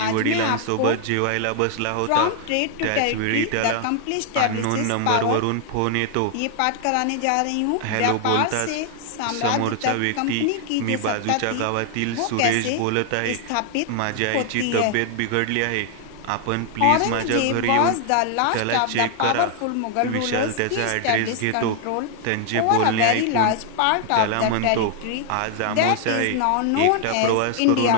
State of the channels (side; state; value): both; different; correlation 0.00